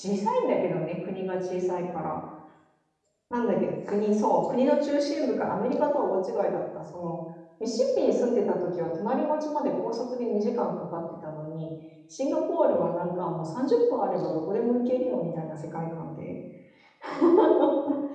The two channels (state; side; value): identical; both; correlation 1.00